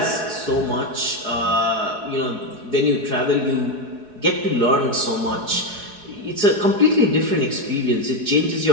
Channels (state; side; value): late; left; 4.7 ms